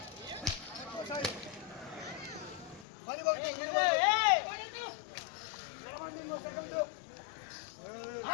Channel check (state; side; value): drops out; right; at 2.9 s